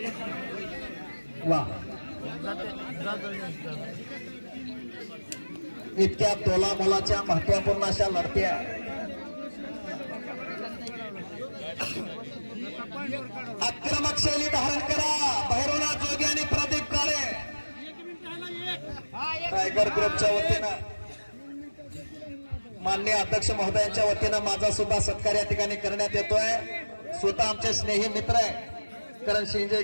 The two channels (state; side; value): inverted; both; correlation -1.00